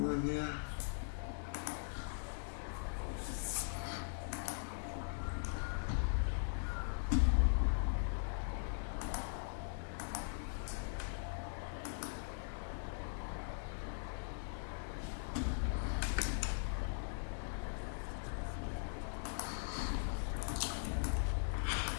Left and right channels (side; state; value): right; silent; digital silence